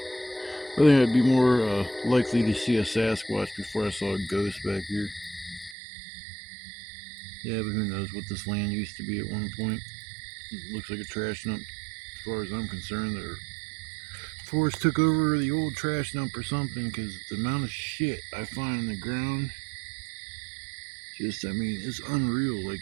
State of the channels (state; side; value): drops out; left; at 5.8 s